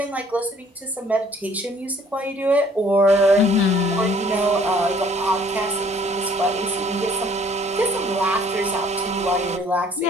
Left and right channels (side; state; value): both; normal; correlation 0.58